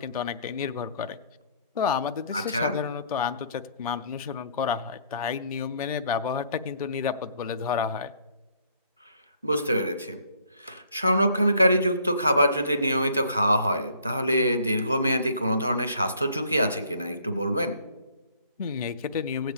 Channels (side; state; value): both; inverted; correlation -0.61